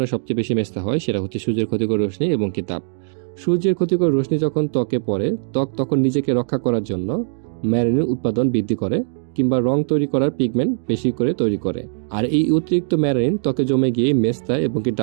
সবচেয়ে বেশি মেস্তা হয় সেটা হচ্ছে সূর্যের ক্ষতিকর রশ্মি এবং কি তাপ। সূর্যের ক্ষতিকর রশ্মি যখন ত্বকে পড়ে, ত্বক তখন নিজেকে রক্ষা করার জন্য ম্যালানিন উৎপাদন বৃদ্ধি করে কিংবা রং তৈরি করার পিগমেন্ট বেশি করে তৈরি করে। আর এই অতিরিক্ত ম্যালানিন ত্বকে জমে গিয়ে মেস্তা এবং কি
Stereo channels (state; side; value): silent; left; digital silence